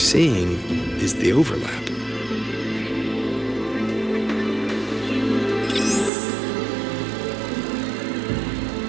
is the overlap.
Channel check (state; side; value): drops out; left; at 6.1 s